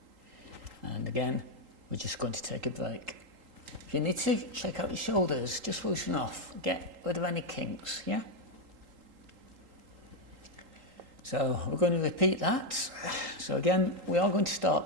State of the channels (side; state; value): left; late; 3.8 ms